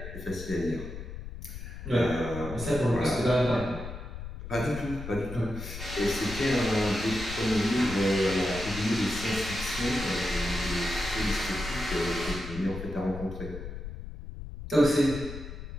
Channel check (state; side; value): noise; left; rumble, 9 dB below the sound